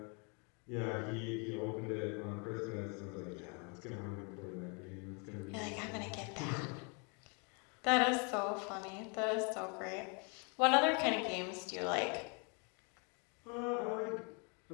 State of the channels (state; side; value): quieter; right; 35.0 dB